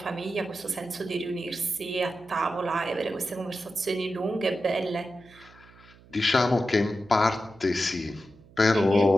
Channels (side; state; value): right; noise; hum, 25 dB below the sound